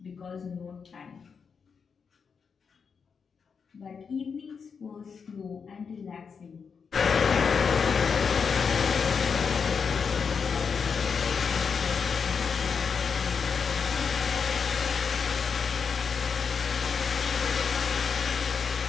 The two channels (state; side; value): quieter; right; 6.0 dB